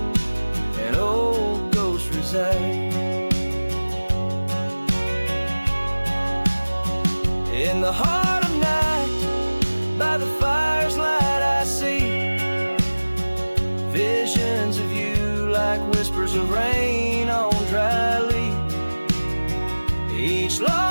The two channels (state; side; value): inverted; both; correlation -1.00